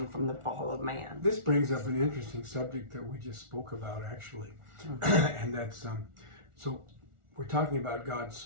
from the fall of man. This brings up an interesting subject that we just spoke about, actually. And that's, so we're talking about God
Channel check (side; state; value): left; late; 1.4 ms